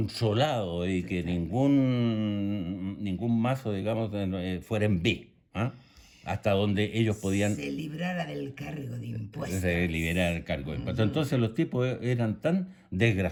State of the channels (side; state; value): both; identical; correlation 1.00